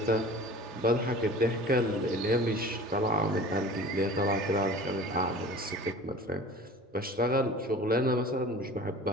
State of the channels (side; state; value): both; normal; correlation 0.41